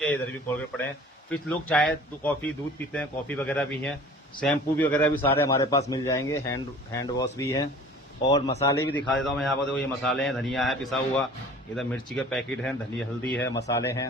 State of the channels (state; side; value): normal; both; correlation 0.46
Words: है। इधर भी कोलगेट पड़े हैं। फिर लोग चाय कॉफी दूध पीते हैं, कॉफी वगैरह भी है। शैम्पू भी वगैरह भी सारे हमारे पास मिल जाएंगे। हैंड वॉश भी है। और मसाले भी दिखा देता हूँ मैं यहाँ पर। देखो ये मसाले हैं, धनिया है पिसा हुआ, इधर मिर्ची के पैकेट हैं, धनिया हल्दी है, मसाले